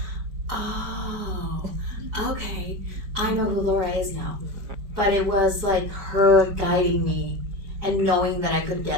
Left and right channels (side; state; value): left; late; 4.8 ms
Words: oh, okay, I know who Laura is now. But it was like her guiding me and knowing that I could